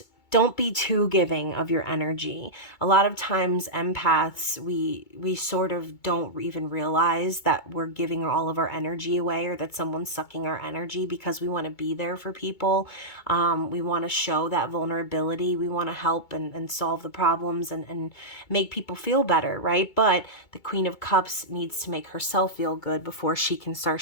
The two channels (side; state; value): right; late; 2.2 ms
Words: Don't be too giving of your energy. A lot of times empaths, we sort of don't even realize that we're giving all of our energy away, or that someone's sucking our energy, because we want to be there for people. We want to show that vulnerability. We want to help and solve the problems and make people feel better, right? But the Queen of Cups needs to make herself feel good before she can start